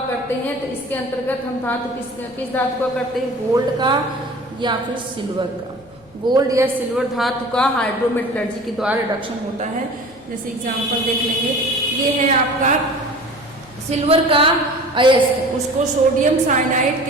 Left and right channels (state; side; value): noise; left; rumble, 27 dB below the sound